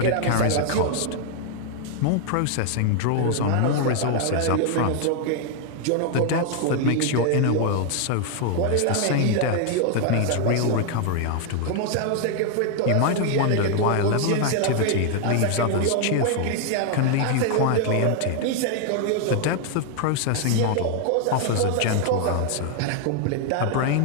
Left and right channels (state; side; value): different; both; correlation 0.00